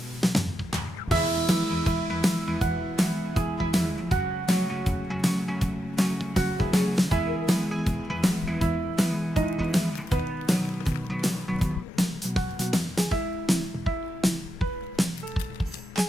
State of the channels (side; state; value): both; normal; correlation 0.86